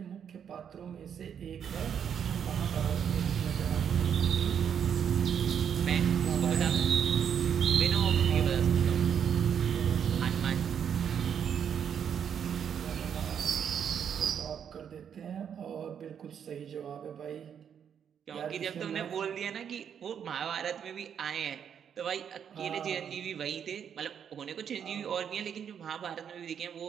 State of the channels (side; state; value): left; quieter; 8.1 dB